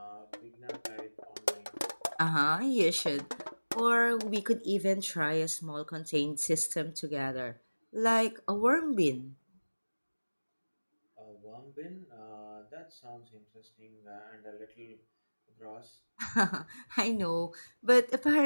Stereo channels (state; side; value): inverted; both; correlation -1.00